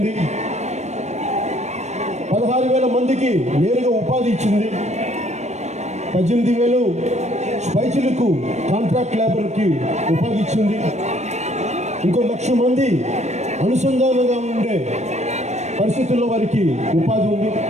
16,000 మందికి నేరుగా ఉపాధి ఇచ్చింది. 18,000 స్పైచులకు కాంట్రాక్ట్ లేబర్కి ఉపాధి ఇచ్చింది. ఇంకో 1,00,000 మంది అనుసంధానంగా ఉండే పరిస్థితుల్లో వారికి ఉపాధి ఉంది.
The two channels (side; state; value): left; late; 0.33 ms